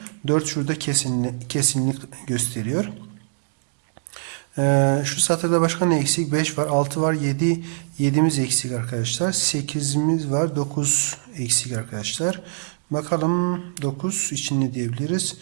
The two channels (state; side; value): silent; left; digital silence